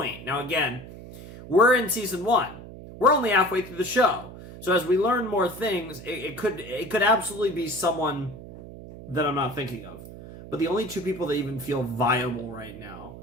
now again, we're in season 1. We're only halfway through the show. So as we learn more things, it could absolutely be someone that I'm not thinking of. But the only 2 people that even feel viable right now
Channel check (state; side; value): noise; right; hum, 14 dB below the sound